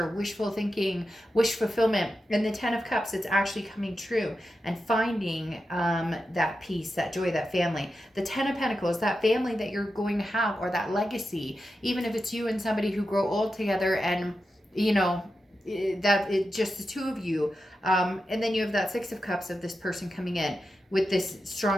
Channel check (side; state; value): both; normal; correlation 0.90